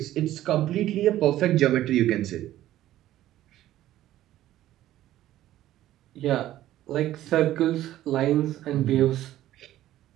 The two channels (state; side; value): quieter; left; 13.8 dB